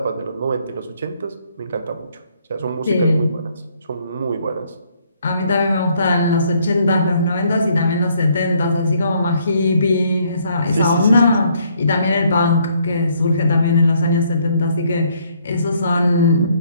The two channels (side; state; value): both; inverted; correlation -0.67